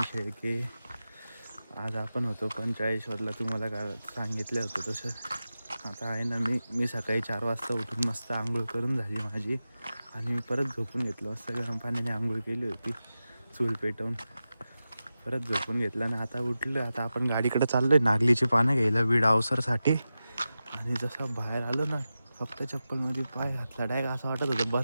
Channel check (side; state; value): both; inverted; correlation -0.93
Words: शेळके. आज आपण होतो पंचाळेश्वरला. तुम्हाला काय सांगितलं होतं तसं आता आहे ना. मी सकाळी 4 वाजता उठून मस्त आंघोळ करून झाली माझी, आणि मी परत झोपून घेतलं. मस्त गरम पाण्याने आंघोळ केली होती, चूल पेटवून परत झोपून घेतलं. आणि आता उठलं. आता आपण गाडीकडे चाललो आहे नागलीची पानं घ्यायला वीड अवसरसाठी. आणि जसं बाहेर आलो ना, फक्त चप्पलमध्ये पाय घातला डायरेक्ट असं वाटत होतं